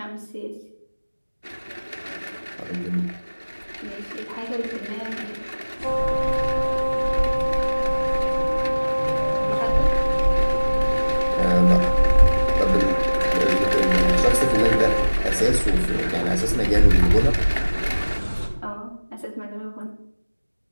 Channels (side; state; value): both; inverted; correlation -1.00